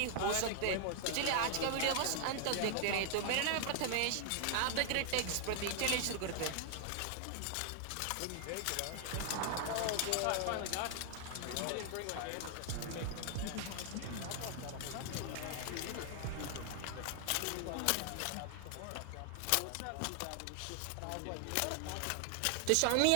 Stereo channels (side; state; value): both; different; correlation 0.00